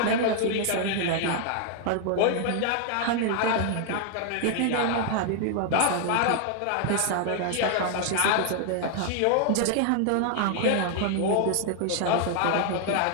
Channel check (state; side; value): different; both; correlation 0.00